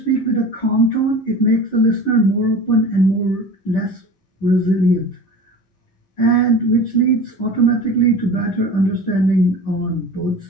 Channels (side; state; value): right; late; 11 ms